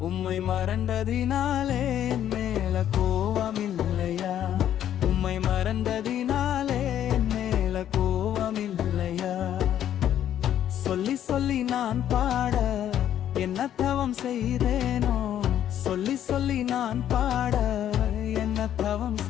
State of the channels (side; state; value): right; quieter; 10.7 dB